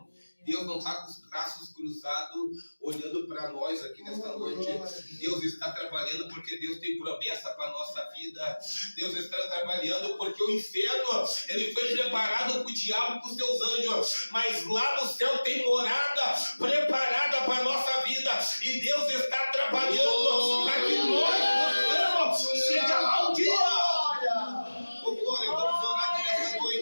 Deus não está com os braços cruzados olhando para nós aqui nesta noite. Deus está trabalhando porque Deus tem promessa para a nossa vida. Deus está trabalhando porque o inferno, ele foi preparado para o diabo e para os seus anjos, mas lá no céu tem morada preparada para a nossa vida, e Deus está trabalhando para que nós possamos chegar lá um dia. Oh, glória, vamos orar aqui nessa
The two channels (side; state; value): both; inverted; correlation -1.00